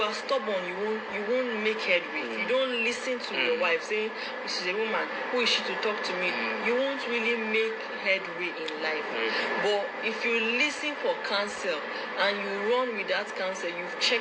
are stubborn, you won't make headway. If you don't listen to your wife saying, "This is a woman, who is she to talk to me?" You won't really make headway in life. But if you listen for counsel and you run with that counsel, you've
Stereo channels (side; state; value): both; identical; correlation 1.00